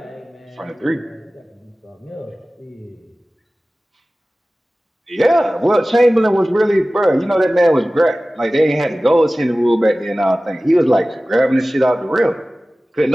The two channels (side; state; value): both; normal; correlation 0.97